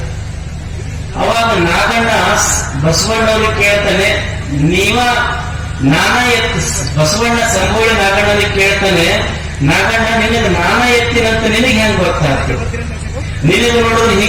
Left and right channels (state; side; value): identical; both; correlation 1.00